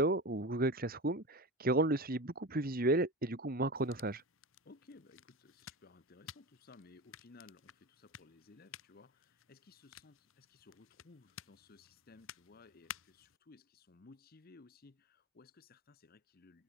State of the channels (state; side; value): normal; both; correlation 0.26